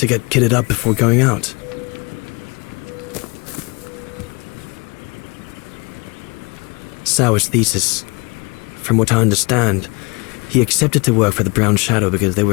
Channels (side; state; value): right; quieter; 29.2 dB